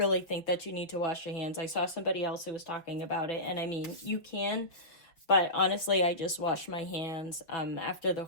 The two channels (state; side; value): late; right; 5.6 ms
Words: think that you need to wash your hands. I saw somebody else who was talking about it, and I mean, you can, but honestly, I just wash my hands after the